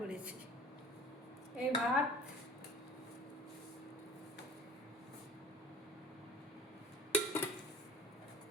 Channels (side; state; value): both; normal; correlation 0.45